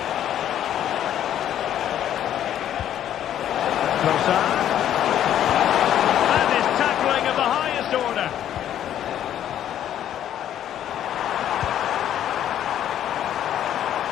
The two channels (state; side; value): quieter; right; 10.8 dB